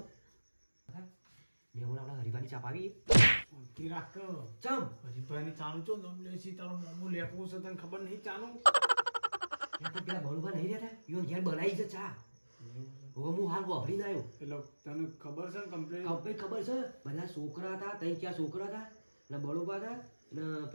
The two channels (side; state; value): both; inverted; correlation -1.00